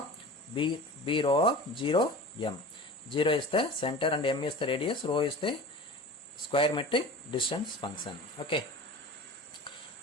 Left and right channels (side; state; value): both; normal; correlation 0.36